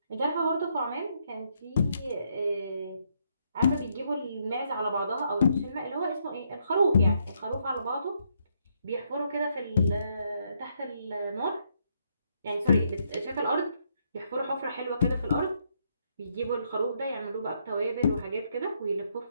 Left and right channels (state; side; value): inverted; both; correlation -0.75